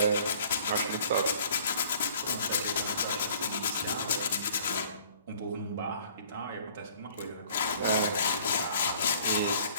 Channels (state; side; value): inverted; both; correlation -0.53